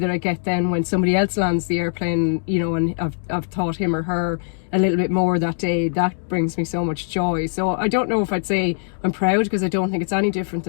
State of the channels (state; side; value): silent; right; 65 dB below the other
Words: that I get then when somebody else lands the airplane, and I've taught him or her a little bit more that day, that brings me so much joy. So I don't know if I'd say I'm proud, because I don't think it's any different